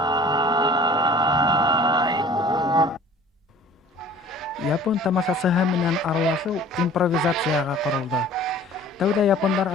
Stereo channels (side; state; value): both; normal; correlation 0.47